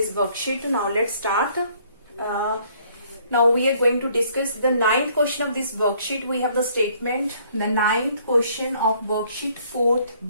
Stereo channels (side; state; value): both; inverted; correlation -0.62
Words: worksheet. Now let's start. Now we are going to discuss the ninth question of this worksheet. We have the statement, the ninth question of worksheet 4th